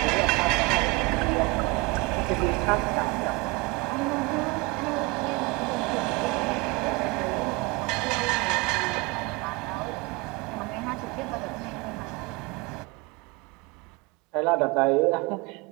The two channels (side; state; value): left; quieter; 25.5 dB